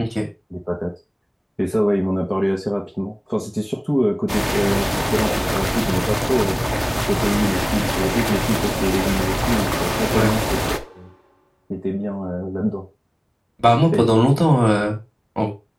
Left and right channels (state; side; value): identical; both; correlation 1.00